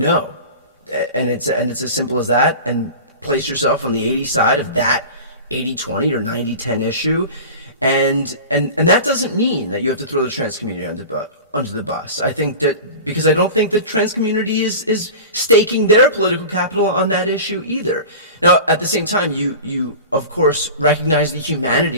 And it's as simple as that, and place yourself on the 80 side of that 80-20 or 90-10 issue. And that doesn't mean that you have to throw the trans community under the bus. I think that because I don't think the trans community is staking their political capital on that issue either. Now, at the same time, you of course recognize the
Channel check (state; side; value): inverted; both; correlation -0.34